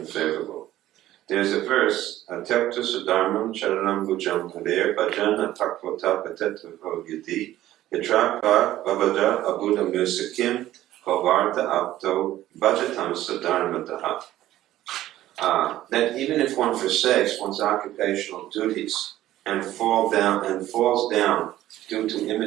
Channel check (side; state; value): left; quieter; 14.1 dB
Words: There's a verse, Tyakta Sudharmam Charanam Bhujam Haver Bhajana Takvota Patetavo Yadi Yatrapa Vavada Abuddha Musakim Kovarta Apto Bhajatam Sudharmataha. That even if one forsakes one's occupational duties and falls down due to